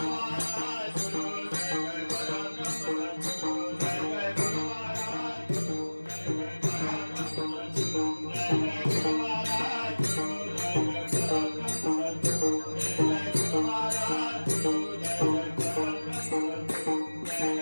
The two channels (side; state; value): both; inverted; correlation -1.00